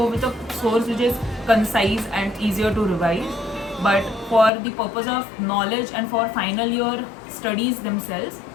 with a source which is concise and easier to revise. But for the purpose of knowledge and for final year studies themselves,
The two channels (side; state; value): right; drops out; at 4.5 s